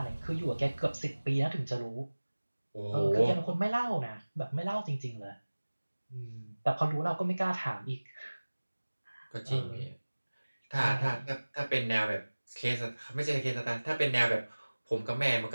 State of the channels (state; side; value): inverted; both; correlation -1.00